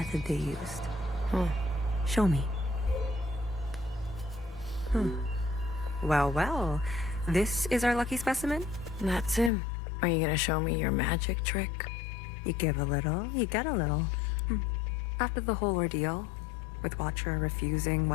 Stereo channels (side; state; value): right; drops out; at 9.5 s